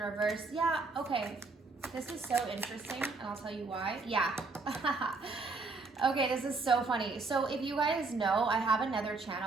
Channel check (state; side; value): quieter; left; 3.9 dB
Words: Yeah, okay. This is so interesting, and I'll tell you why. Yeah. Okay, this is so funny. So if you guys know, I have another